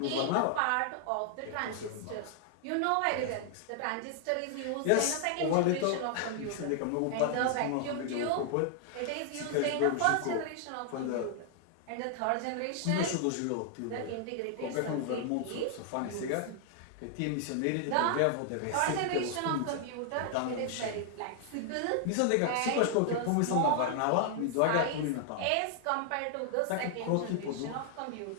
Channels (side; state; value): both; different; correlation -0.01